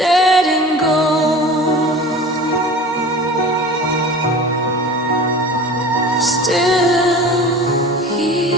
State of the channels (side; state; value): both; normal; correlation 0.37